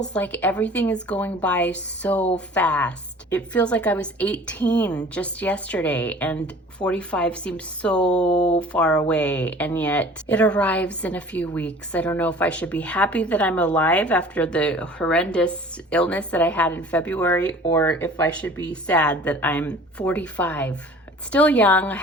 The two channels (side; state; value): both; normal; correlation 0.46